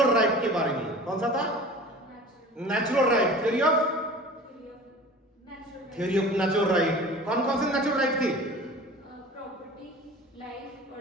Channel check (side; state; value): both; normal; correlation 0.41